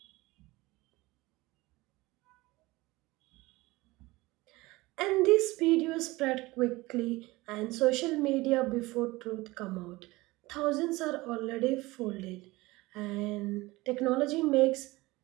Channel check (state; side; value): quieter; left; 20.9 dB